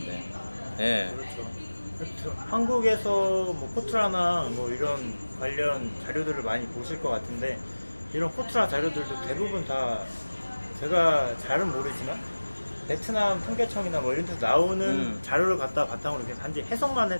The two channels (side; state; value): both; inverted; correlation -1.00